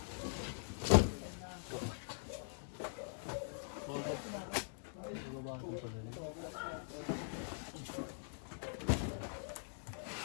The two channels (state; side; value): silent; right; digital silence